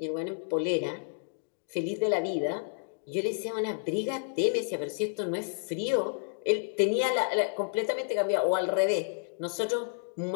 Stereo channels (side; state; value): right; silent; digital silence